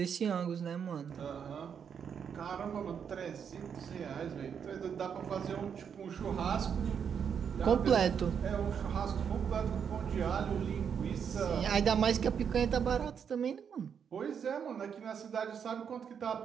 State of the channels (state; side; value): quieter; left; 7.4 dB